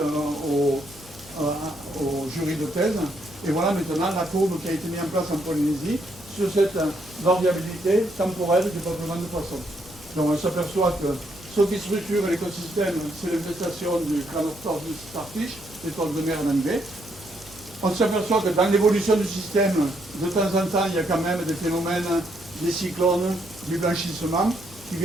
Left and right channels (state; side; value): noise; right; hum, 24 dB below the sound